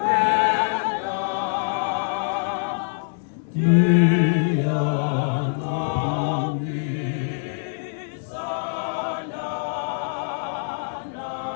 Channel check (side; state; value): right; silent; 62 dB below the other